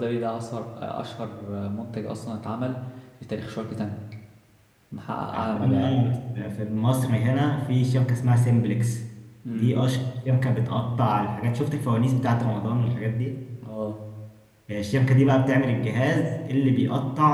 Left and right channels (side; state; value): both; identical; correlation 1.00